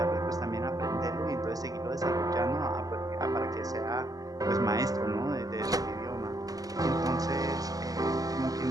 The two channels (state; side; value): late; left; 0.17 ms